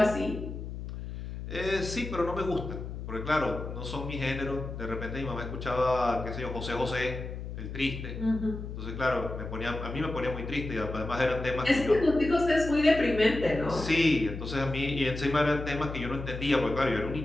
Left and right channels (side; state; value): left; noise; hum, 8 dB below the sound